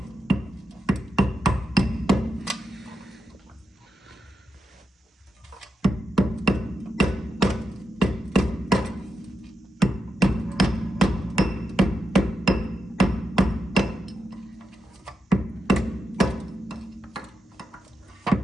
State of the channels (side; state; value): both; normal; correlation 0.86